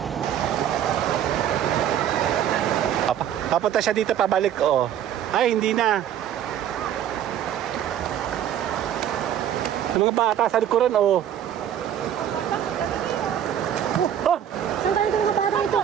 Papunta siya dito, pabalik, oh. Ay, hindi na. Yung mga bata sa likuran, oh. Oh! Saan tayo mga bata ito?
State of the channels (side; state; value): left; quieter; 10.1 dB